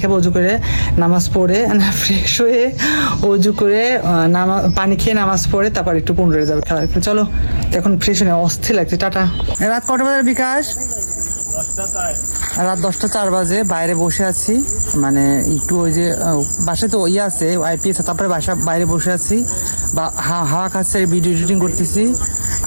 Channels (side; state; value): both; inverted; correlation -1.00